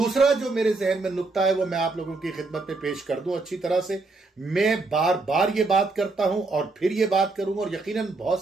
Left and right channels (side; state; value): left; quieter; 3.6 dB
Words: जो मेरे जहन में नुक्ता है वो मैं आप लोगों की खिदमत में पेश कर दूं अच्छी तरह से। मैं बार बार ये बात करता हूं और फिर ये बात करूंगा, और यकीनन